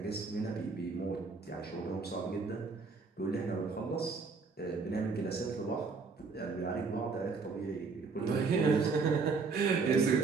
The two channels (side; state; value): left; quieter; 4.6 dB